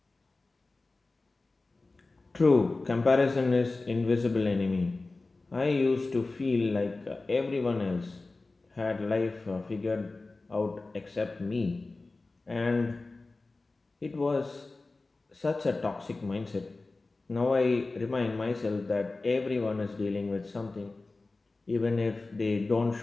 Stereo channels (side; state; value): right; quieter; 3.4 dB